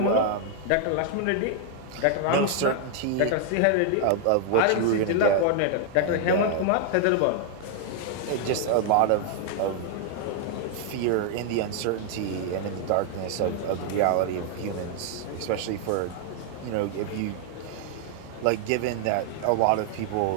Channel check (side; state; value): both; different; correlation 0.00